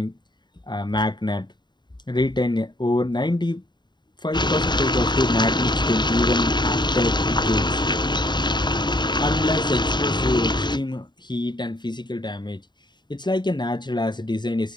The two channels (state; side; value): late; right; 0.21 ms